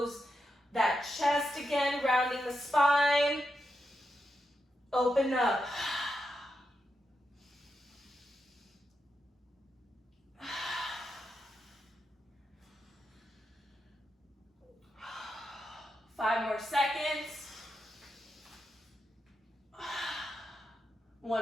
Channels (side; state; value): both; normal; correlation 0.86